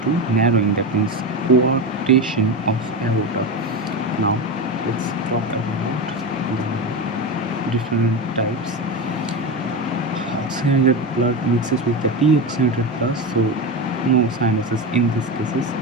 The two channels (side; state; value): both; normal; correlation 0.19